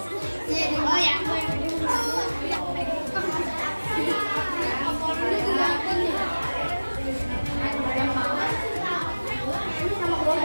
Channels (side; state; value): both; inverted; correlation -1.00